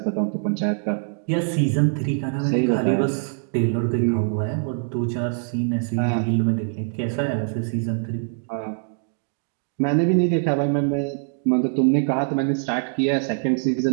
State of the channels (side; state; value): left; silent; digital silence